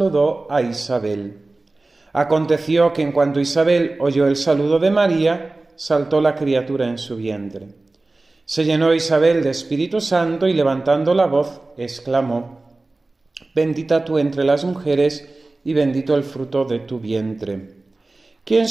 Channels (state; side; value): quieter; left; 3.1 dB